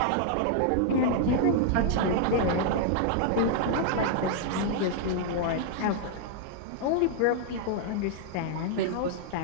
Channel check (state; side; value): different; both; correlation -0.01